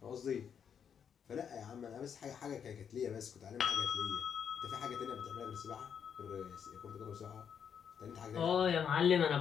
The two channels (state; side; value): quieter; right; 7.6 dB